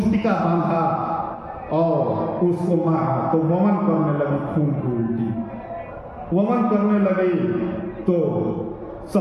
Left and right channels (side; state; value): both; identical; correlation 1.00